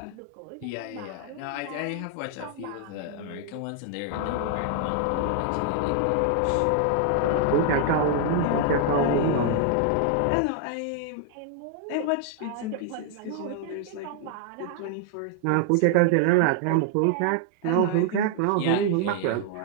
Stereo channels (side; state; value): both; different; correlation 0.00